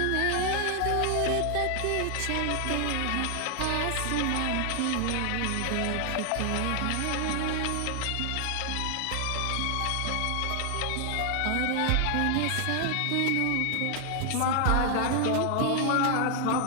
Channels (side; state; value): both; different; correlation 0.00